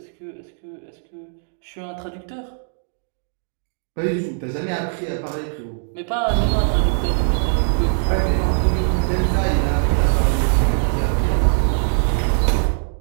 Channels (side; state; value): left; silent; digital silence